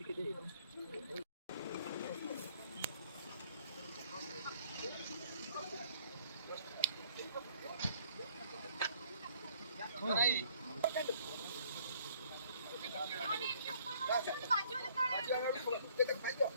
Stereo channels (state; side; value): inverted; both; correlation -0.59